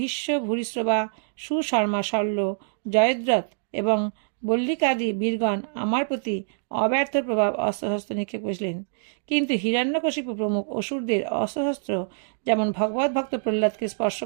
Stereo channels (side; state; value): left; silent; digital silence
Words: ভূরিশ্রবা, সুশর্মা, শল্য, জয়দ্রথ এবং বল্লিকাদি বীরগণ আমার প্রতি অব্যর্থ প্রভাব অস্ত্রশস্ত্র নিক্ষেপ করেছিলেন, কিন্তু হিরণ্যকশিপু প্রমুখ অসুরদের অস্ত্রশস্ত্র যেমন ভগবত ভক্ত প্রহ্লাদকে স্পর্শ